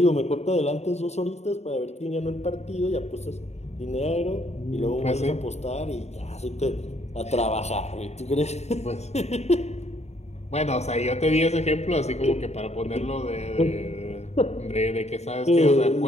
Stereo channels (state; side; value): late; right; 0.32 ms